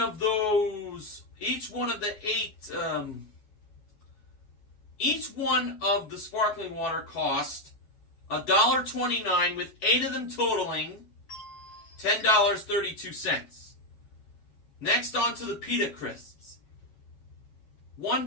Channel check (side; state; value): right; late; 9.4 ms